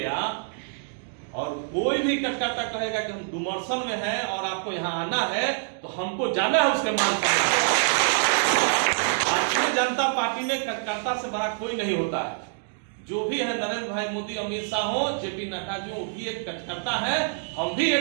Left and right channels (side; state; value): left; silent; digital silence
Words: और कोई भी कटकाटा कहेगा कि हम डुमरसन में हैं और आपको यहाँ आना है तो हमको जाना है, उसके मान सम्मान। भारतीय जनता पार्टी में कटकाटा से बड़ा कोई नहीं होता है। जो भी है, नरेंद्र भाई मोदी, अमित शाह हो, जेपी नड्डा जी, वो भी एक कटकर्ता है, हम भी